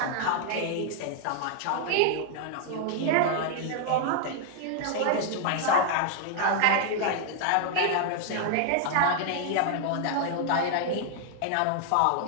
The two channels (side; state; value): both; different; correlation 0.00